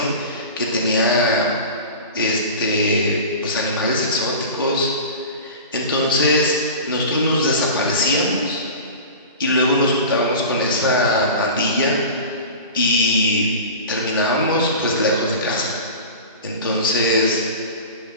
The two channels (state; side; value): inverted; both; correlation -0.33